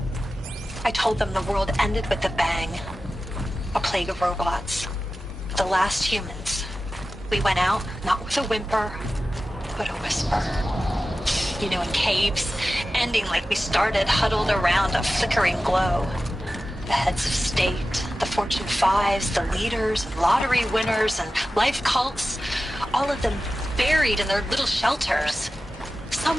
I told them the world ended with a bang. A plague of robots. The last humans. We went out, not with a whimper, but a whisper. You know, in caves, ending like we started, huddled around a flickering glow. The heads of state, the Fortune 5s, the leaders, and lottery winners, and life cults, all of them buried in their little shelters.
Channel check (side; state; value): both; normal; correlation 0.94